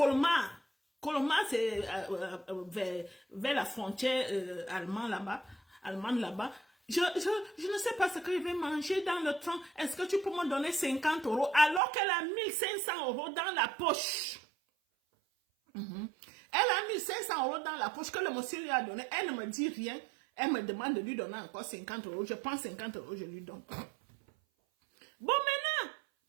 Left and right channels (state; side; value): drops out; left; at 11.8 s